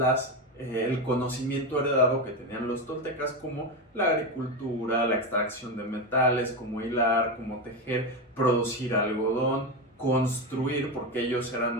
el conocimiento heredado que tenían los toltecas, como la agricultura, la extracción de metales, cómo hilar, cómo tejer, producir algodón, construir, porque ellos eran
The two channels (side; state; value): both; normal; correlation 0.15